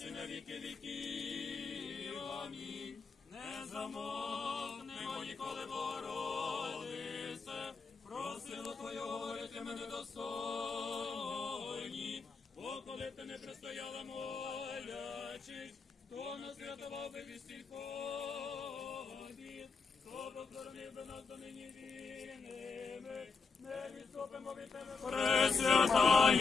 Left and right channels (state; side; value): quieter; right; 4.8 dB